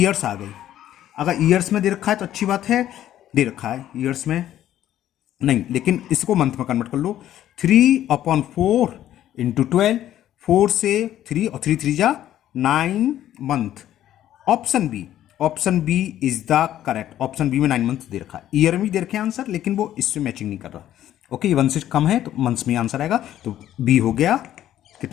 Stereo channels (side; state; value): right; quieter; 12.2 dB